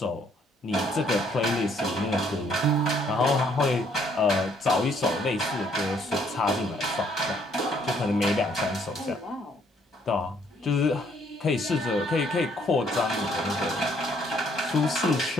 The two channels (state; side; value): normal; both; correlation 0.66